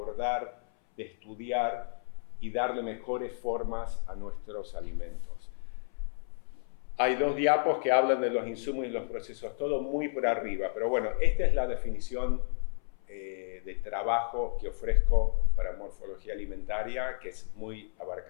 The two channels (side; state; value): right; silent; 57 dB below the other